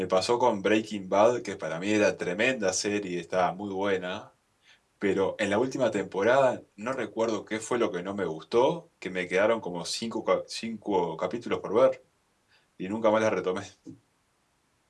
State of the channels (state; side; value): identical; both; correlation 1.00